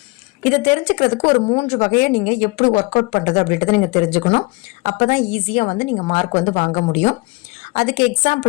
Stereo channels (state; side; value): quieter; right; 27.1 dB